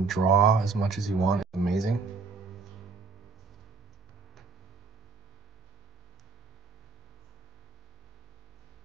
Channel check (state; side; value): quieter; left; 4.8 dB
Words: draw as much as you want is amazing.